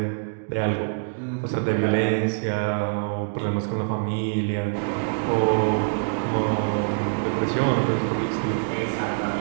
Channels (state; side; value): silent; left; digital silence